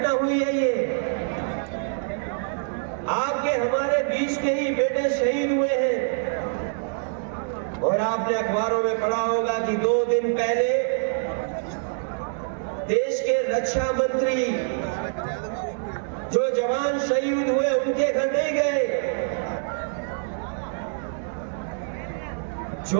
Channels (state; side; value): silent; left; digital silence